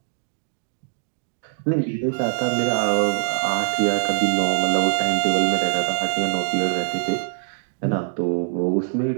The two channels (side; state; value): left; silent; digital silence